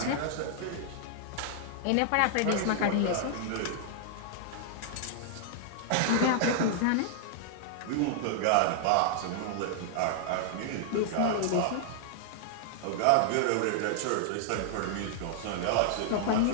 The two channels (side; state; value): both; different; correlation -0.01